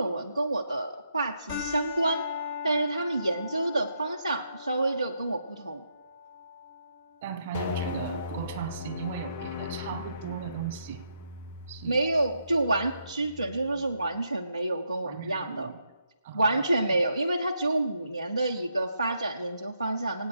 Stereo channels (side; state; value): both; inverted; correlation -0.78